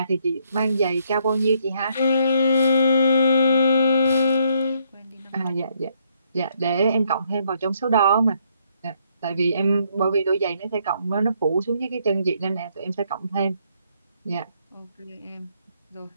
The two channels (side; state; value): both; inverted; correlation -0.71